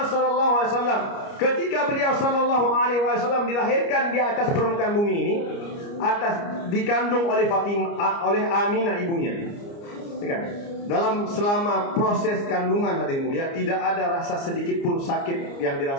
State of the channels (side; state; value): right; late; 29 ms